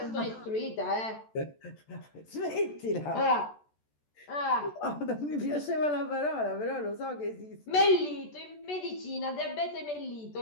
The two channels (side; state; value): right; late; 14 ms